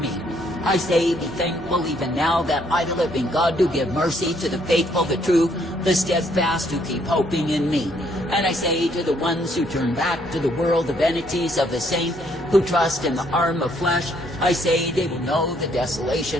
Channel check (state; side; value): normal; both; correlation 0.68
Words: I say, be thankful even now that I, the living God, do give mercy to the faithful, the true, the steadfast, who keep hoping in me. And I say to the ones who turn back to the world, the vanities of the same, who trust in the arm of flesh, I say they will know the